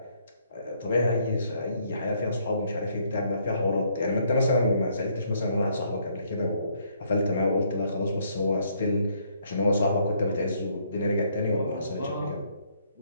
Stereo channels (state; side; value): inverted; both; correlation -0.69